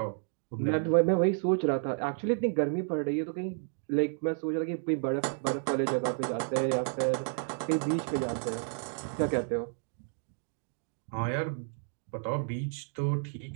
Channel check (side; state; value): left; silent; 57 dB below the other